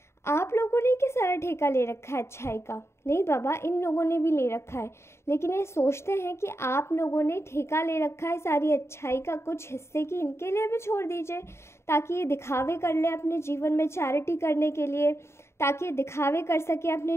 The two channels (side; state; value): right; late; 0.13 ms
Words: आप लोगों ने क्या सारा ठेका ले रखा है अच्छाई का। नहीं बाबा, इन लोगों ने भी ले रखा है, लेकिन ये सोचते हैं कि आप लोगों ने ठेका ले रखा है सारी अच्छाई का, कुछ हिस्से की इनके लिए भी छोड़ दीजिए, ताकि ये दिखावे कर ले अपने जीवन में, चैरिटी करने के लिए, ताकि ये दिखावे कर सके अपने